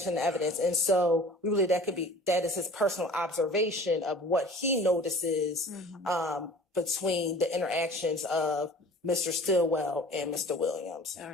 in the evidence. And so we believe that is his personal observation of what he notices between the interactions of Mr. Stillwell and Mr. Williams. All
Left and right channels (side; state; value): both; normal; correlation 0.45